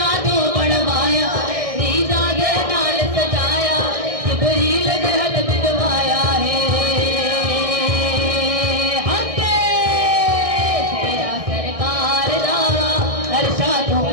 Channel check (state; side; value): late; left; 1.6 ms